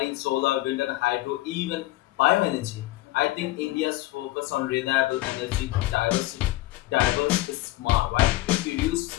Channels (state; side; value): quieter; right; 17.8 dB